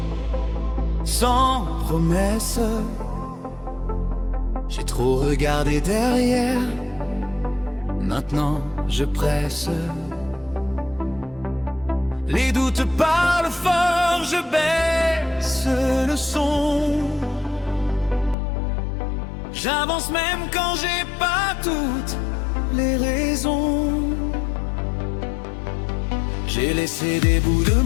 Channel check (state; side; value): drops out; right; at 18.4 s